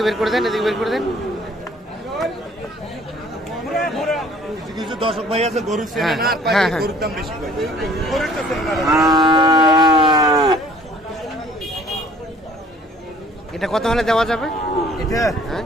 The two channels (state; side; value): normal; both; correlation 0.55